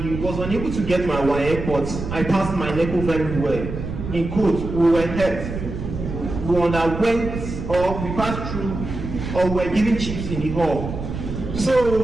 was unable to get my WAEC, but I passed my NECO very well. In quote, we were helped. We underwent, or we passed through, or we were given chips in the hall.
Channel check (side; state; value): right; noise; rumble, 7 dB below the sound